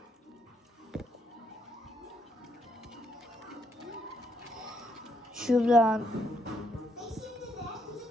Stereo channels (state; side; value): normal; both; correlation 0.75